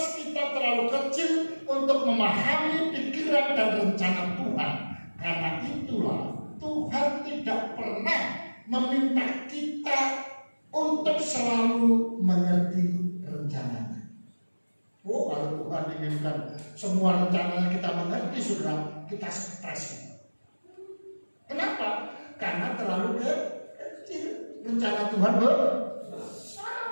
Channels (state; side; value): inverted; both; correlation -1.00